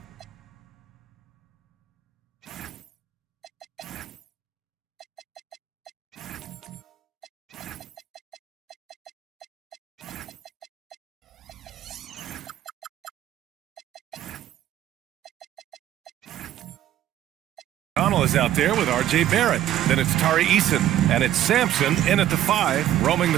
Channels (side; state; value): left; quieter; 12.3 dB